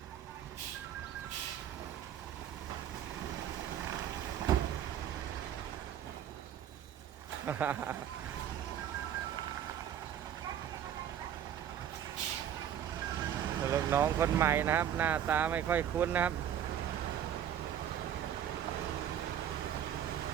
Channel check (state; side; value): quieter; left; 9.9 dB